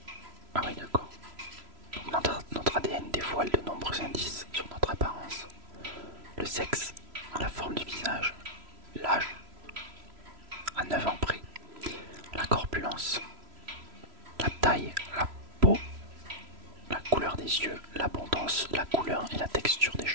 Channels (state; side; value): late; left; 3.0 ms